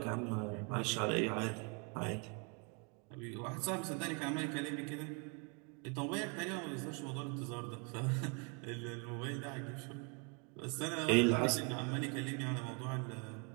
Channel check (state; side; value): quieter; left; 32.9 dB